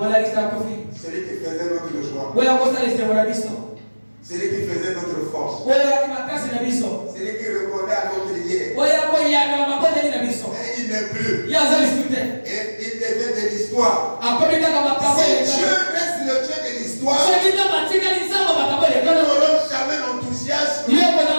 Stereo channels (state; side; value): inverted; both; correlation -1.00